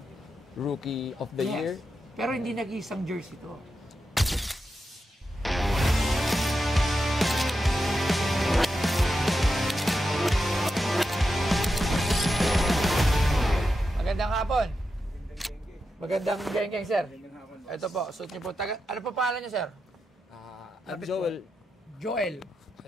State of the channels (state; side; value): normal; both; correlation 0.88